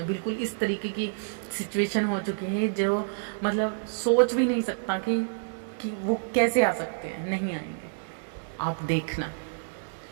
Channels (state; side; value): silent; left; 59 dB below the other